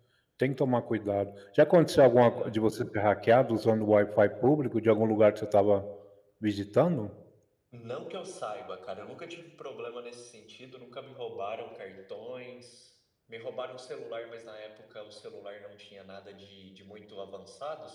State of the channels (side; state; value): both; identical; correlation 1.00